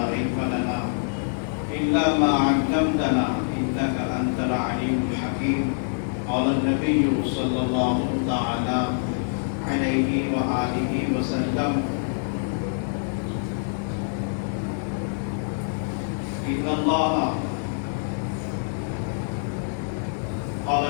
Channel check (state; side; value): silent; right; digital silence